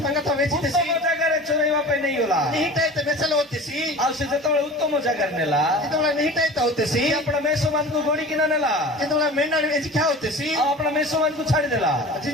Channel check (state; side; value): normal; both; correlation 0.37